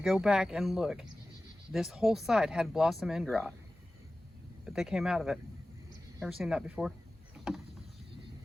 back and look. This whole side had blossom end rot, but they came out of it. Never seen that before.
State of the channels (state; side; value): normal; both; correlation 0.96